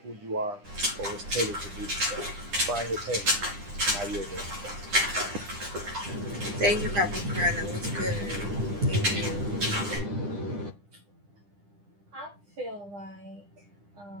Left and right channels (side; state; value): left; late; 10 ms